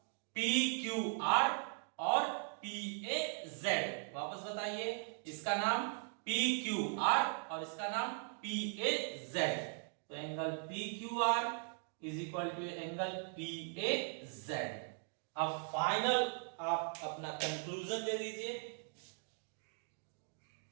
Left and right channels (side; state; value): left; silent; 51 dB below the other